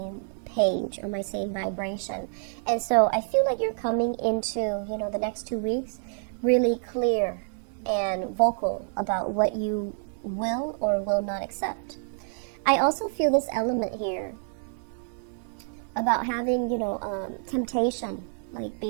page, on my same vibration. And so I feel like you're coming into, the next 2 weeks really clear and vocal about what you will or will not accept. I also feel this element here about having, temptation, like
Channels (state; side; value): silent; left; digital silence